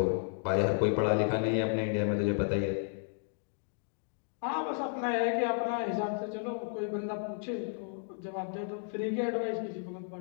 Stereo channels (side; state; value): right; silent; digital silence